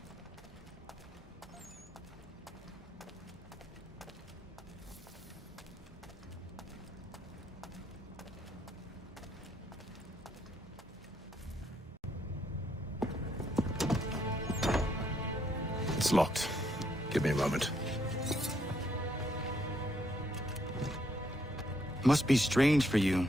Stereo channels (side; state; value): both; normal; correlation 0.73